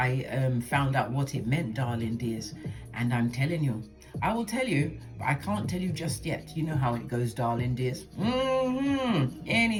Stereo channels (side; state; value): both; identical; correlation 1.00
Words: out what it meant, darling dears, and I'm telling you, I will tell you, but I can't tell you just yet. You know how it goes, darling dears.